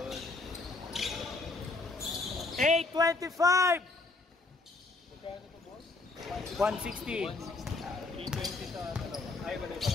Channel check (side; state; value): right; quieter; 3.5 dB